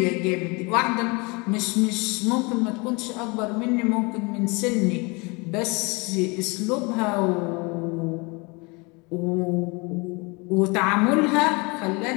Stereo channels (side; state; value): right; quieter; 28.1 dB